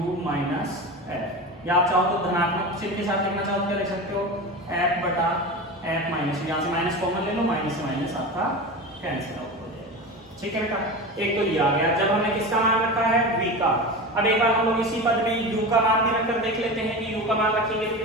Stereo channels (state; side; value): normal; both; correlation 0.27